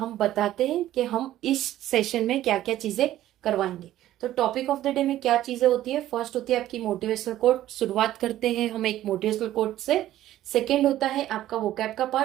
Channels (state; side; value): quieter; left; 13.6 dB